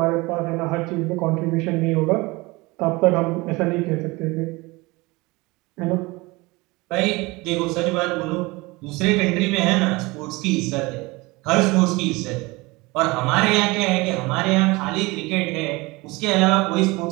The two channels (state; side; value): quieter; left; 23.3 dB